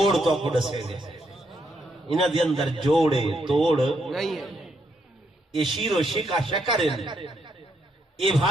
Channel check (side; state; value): both; normal; correlation 0.77